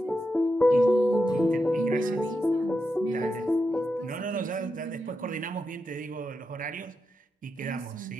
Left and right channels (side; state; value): both; normal; correlation 0.87